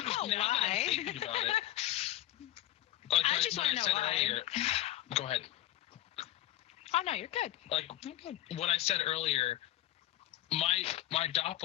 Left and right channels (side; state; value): right; quieter; 14.5 dB